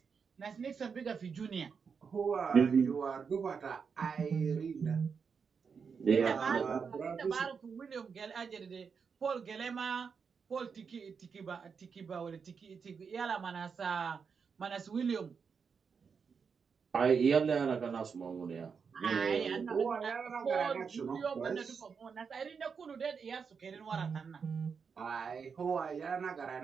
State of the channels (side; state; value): left; quieter; 5.9 dB